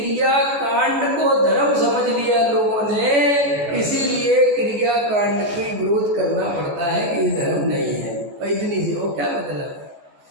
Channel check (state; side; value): late; left; 14 ms